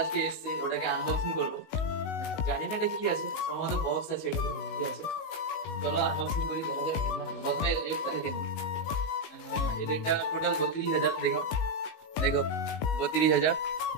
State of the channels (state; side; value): late; right; 19 ms